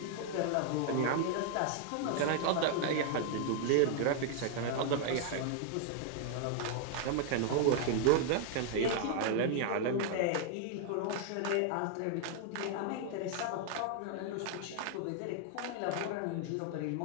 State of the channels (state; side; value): different; both; correlation 0.00